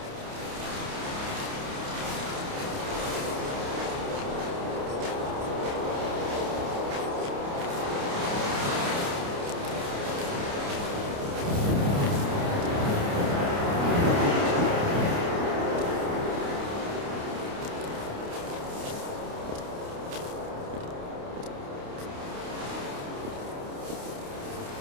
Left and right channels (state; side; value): late; left; 29 ms